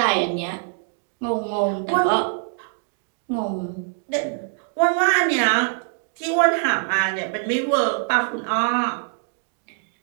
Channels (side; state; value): left; silent; digital silence